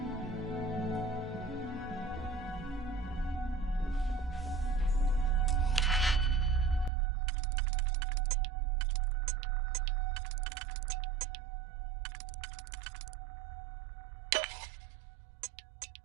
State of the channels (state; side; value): drops out; left; at 6.9 s